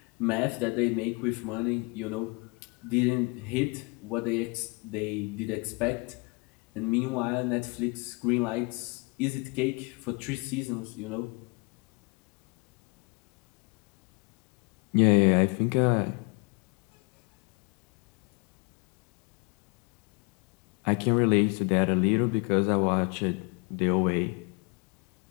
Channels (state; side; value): quieter; right; 29.7 dB